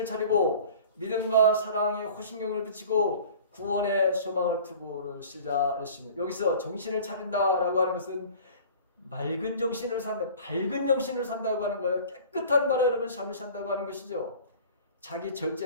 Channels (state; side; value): inverted; both; correlation -0.44